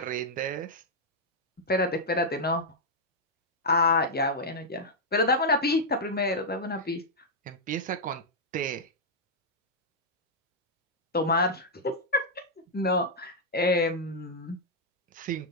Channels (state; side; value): normal; both; correlation -0.05